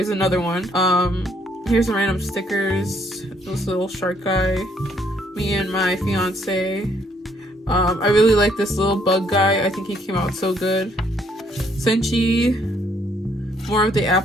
another one. Here's some random stickers. This little shark guy, me and my fiance. I really like this little bug guy. I think he came out so good. Senchi. More of the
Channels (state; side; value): normal; both; correlation 0.68